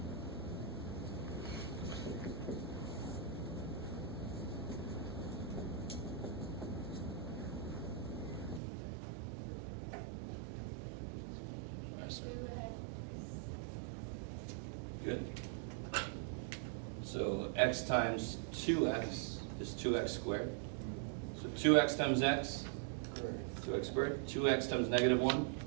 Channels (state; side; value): drops out; left; at 8.6 s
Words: Good. So x times 2x is 2x squared. So 2x times x, 2x squared. 2x times negative 1.